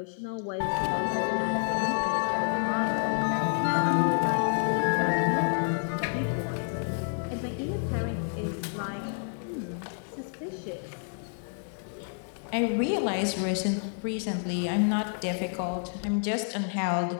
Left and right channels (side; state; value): right; silent; 59 dB below the other